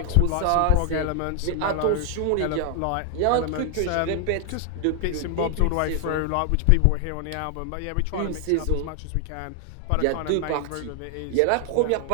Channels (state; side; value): different; both; correlation 0.00